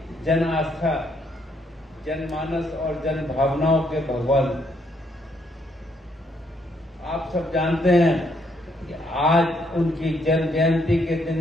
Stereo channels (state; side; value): normal; both; correlation 0.72